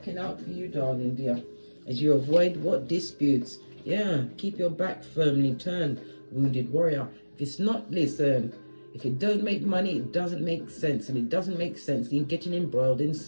out for you, darling dear. As you avoid what disputes. Yeah, keep your back firmly turned, wounded warrior. If it's not, listen, if it don't make money, it doesn't make sense. And it doesn't make sense in getting embroiled in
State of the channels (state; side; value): inverted; both; correlation -1.00